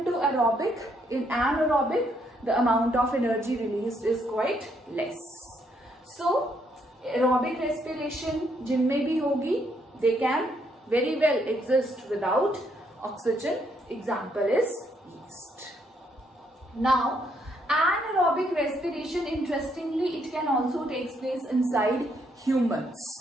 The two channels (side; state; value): both; normal; correlation 0.73